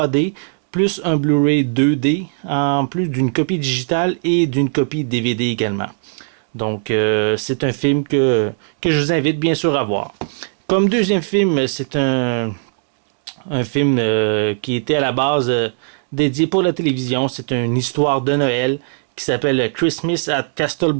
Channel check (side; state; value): left; silent; digital silence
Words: plus un Blu-ray 2D, en plus d'une copie digitale et d'une copie DVD également. Donc, c'est un film que je vous invite bien sûr à voir. Comme deuxième film, c'est un film qui était à la base dédié pour la télévision. C'est une histoire de Noël qui s'appelle Christmas at